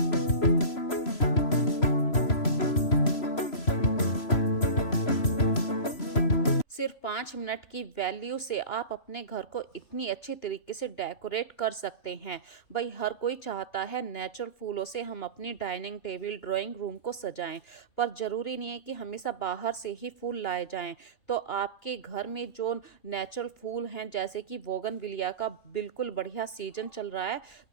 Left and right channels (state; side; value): late; right; 3.0 ms